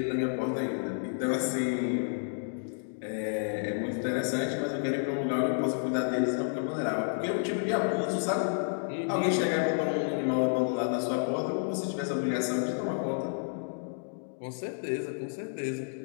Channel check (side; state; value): right; silent; digital silence